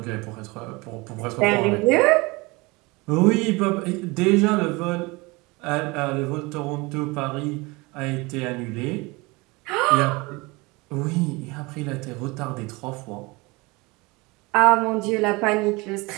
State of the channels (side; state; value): left; quieter; 24.6 dB